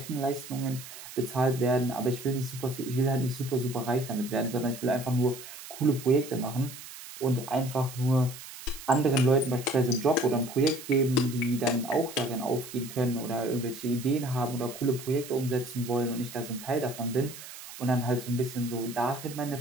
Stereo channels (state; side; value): noise; right; hiss, 14 dB below the sound